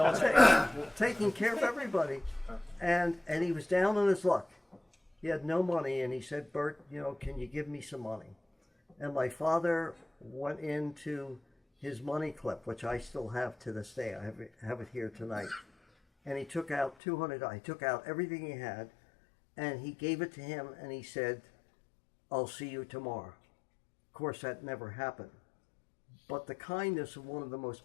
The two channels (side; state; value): right; drops out; at 16.9 s